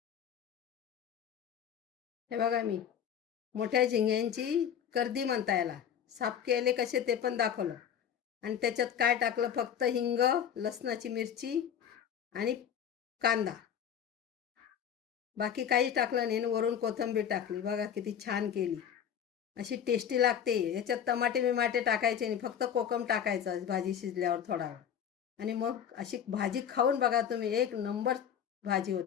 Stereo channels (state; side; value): quieter; right; 8.8 dB